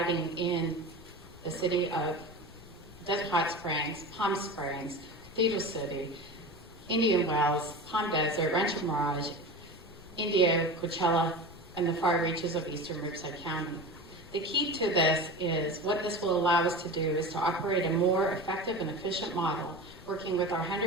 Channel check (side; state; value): left; noise; rumble, 21 dB below the sound